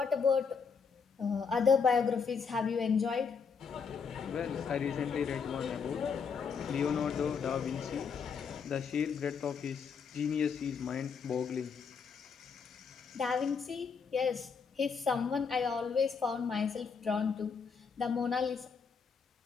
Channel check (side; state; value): right; quieter; 5.8 dB